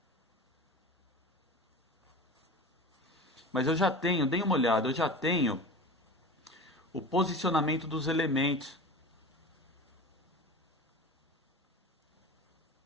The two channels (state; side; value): normal; both; correlation 0.33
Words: Mas eu já tenho, dê uma olhada, eu já tenho o posicionamento dos elementos.